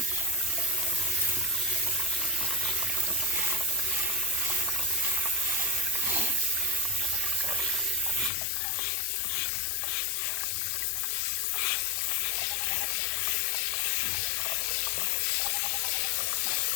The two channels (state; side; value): drops out; right; at 8.3 s